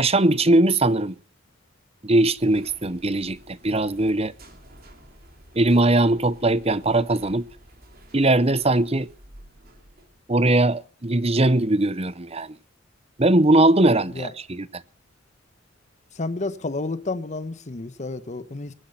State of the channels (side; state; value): both; normal; correlation 0.57